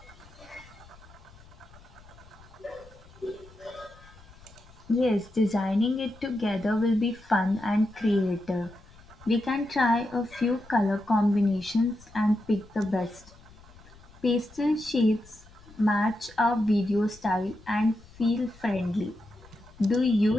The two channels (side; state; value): left; noise; rumble, 23 dB below the sound